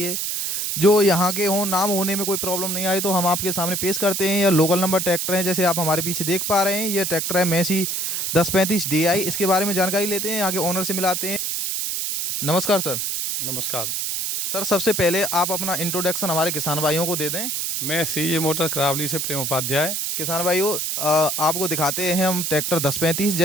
जो यहाँ के हों, नाम होने में कोई प्रॉब्लम नहीं आई तो हम आपके सामने पेश करते हैं। यह लोकल नंबर ट्रैक्टर हैं, जैसे आप हमारे पीछे देख पा रहे हैं। ये ट्रैक्टर है मैसी 1035 DI। इसके बारे में जानकारी लेते हैं, आगे ओनर से मिलाते हैं। नमस्कार सर। नमस्कार सर, सबसे पहले आप अपना इंट्रोडक्शन हमारे किसान भाइयों को दे दें। मैं CJ मोटर करावली से प्रेम उपाध्याय। किसान भाइयों, आपको दिखाते हैं हम ट्रैक्टर 1035।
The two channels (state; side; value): noise; right; hiss, 1 dB below the sound